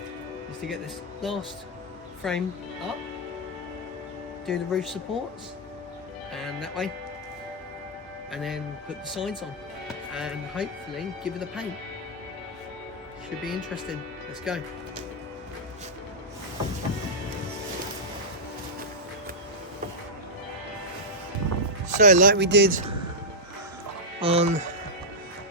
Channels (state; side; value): normal; both; correlation -0.07